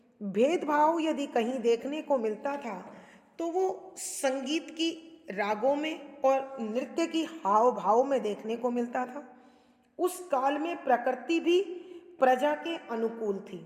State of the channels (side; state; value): both; identical; correlation 1.00